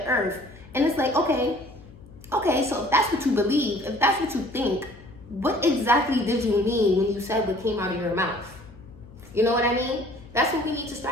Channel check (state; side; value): noise; left; hum, 21 dB below the sound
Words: earth. And it's like, okay, so if that's what you believe, if that's what you think, what exactly did you mean when you said what came out of your mouth? You know what I mean? That's what we need to